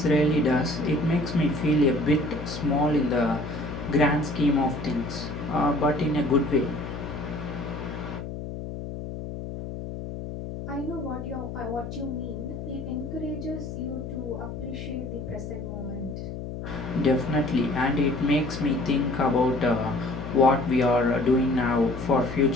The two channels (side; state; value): left; noise; hum, 8 dB below the sound